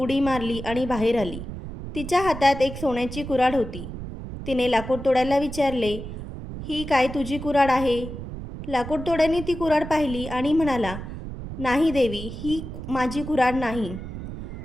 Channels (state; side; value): noise; right; rumble, 9 dB below the sound